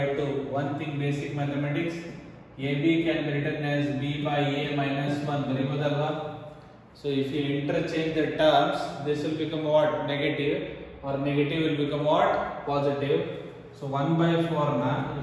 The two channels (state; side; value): identical; both; correlation 1.00